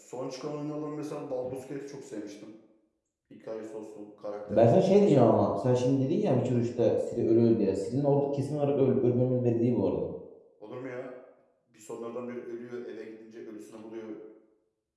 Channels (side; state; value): both; identical; correlation 1.00